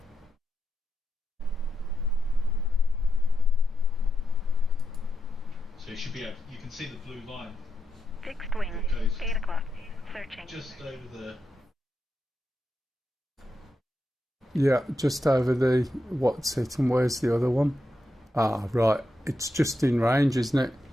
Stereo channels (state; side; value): normal; both; correlation 0.85